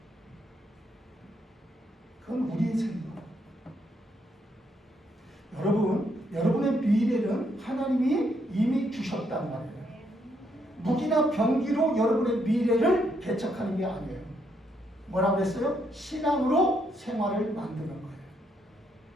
그건 우리의 생각. 여러분의 미래는 하나님이 이미 주셨단 말이에요. 무기나 병기로 여러분의 미래를 개척하는 게 아니에요. 뭐라고 했어요? 신앙으로 생활을 만드는 거예요.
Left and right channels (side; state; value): both; normal; correlation 0.75